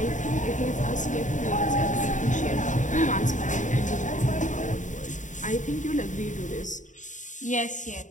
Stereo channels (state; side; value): late; right; 0.36 ms